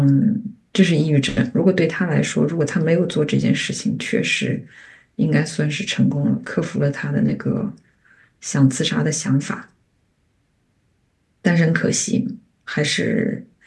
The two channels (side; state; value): both; identical; correlation 1.00